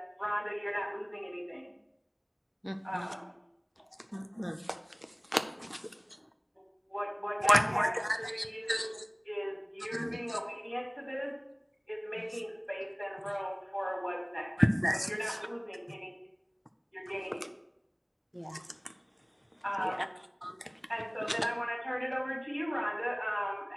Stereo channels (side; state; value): both; identical; correlation 1.00